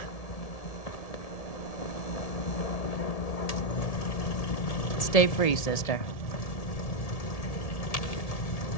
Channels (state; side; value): late; right; 1.7 ms